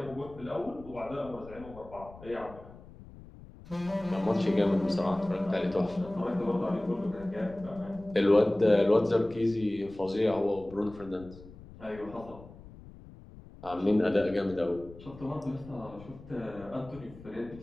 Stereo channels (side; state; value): left; noise; rumble, 18 dB below the sound